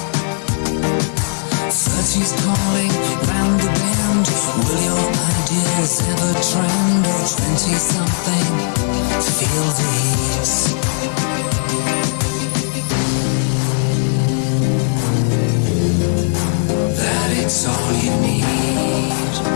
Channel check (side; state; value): right; silent; digital silence